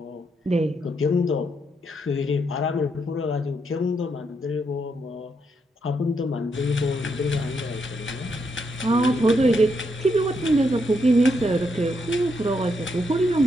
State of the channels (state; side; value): normal; both; correlation 0.79